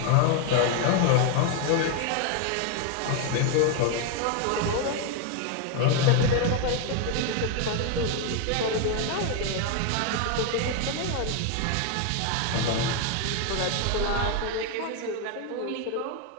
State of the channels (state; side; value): different; both; correlation 0.01